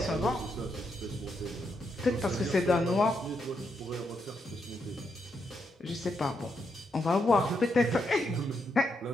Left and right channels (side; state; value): both; normal; correlation 0.80